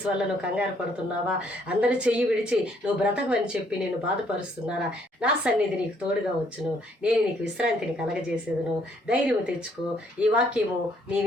వల్ల నువ్వు కంగారు పడుతున్నావా? అందరి చెయ్యి విడిచి నువ్వు బ్రతకమని చెప్పి నేను బాధపరుస్తున్నారా? నా సన్నిధి నీకు తోడుగా వచ్చును, నేను నీకు విశ్రాంతిని కలగజేసేదను. ధైర్యం తెచ్చుకో. ఈ వాక్యము నీ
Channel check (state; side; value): normal; both; correlation 0.67